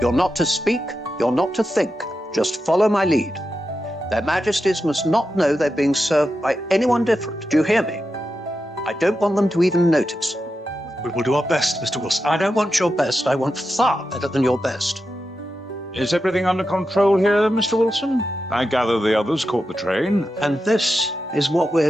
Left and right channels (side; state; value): both; normal; correlation 0.89